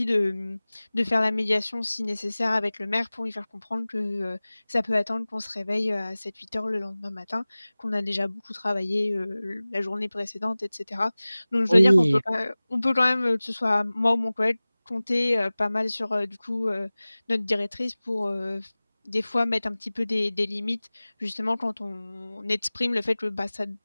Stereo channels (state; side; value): inverted; both; correlation -0.99